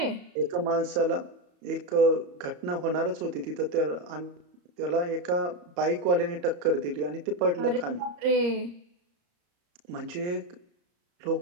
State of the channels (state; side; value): late; left; 34 ms